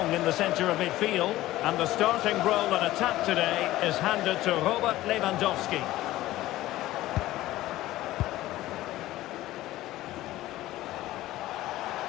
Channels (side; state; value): right; quieter; 16.0 dB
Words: in the centre of midfield. And the starting role in attack today is handed to Robert Lewandowski.